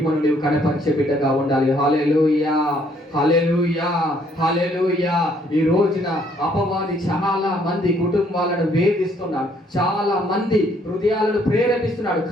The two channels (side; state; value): both; normal; correlation 0.66